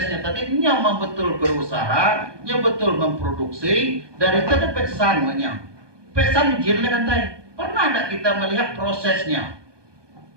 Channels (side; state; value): left; late; 1.2 ms